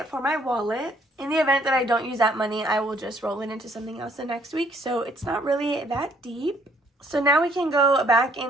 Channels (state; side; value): normal; both; correlation 0.64